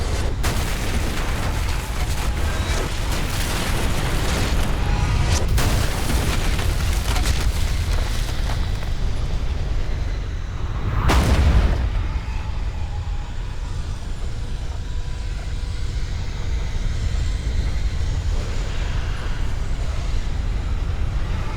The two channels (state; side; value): identical; both; correlation 1.00